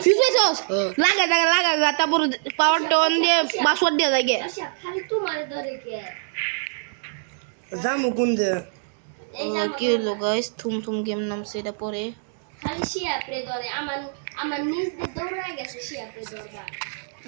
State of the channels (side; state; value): left; silent; digital silence